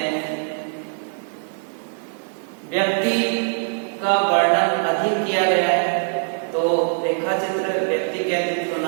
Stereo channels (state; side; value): silent; left; 64 dB below the other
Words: व्यक्ति का वर्णन अधिक किया गया है, तो रेखा चित्र व्यक्ति केंद्रित